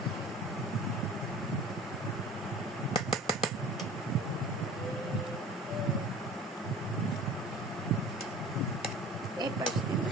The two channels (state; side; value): normal; both; correlation 0.42